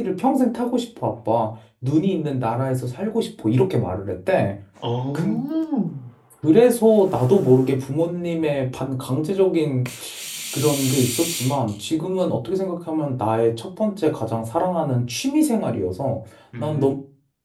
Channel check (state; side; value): identical; both; correlation 1.00